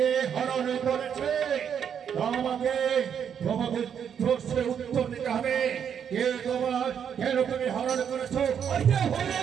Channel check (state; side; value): quieter; left; 8.1 dB